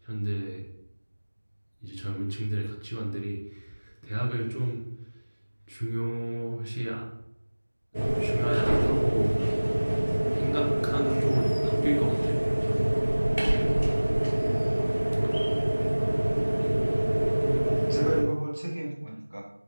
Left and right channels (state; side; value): inverted; both; correlation -1.00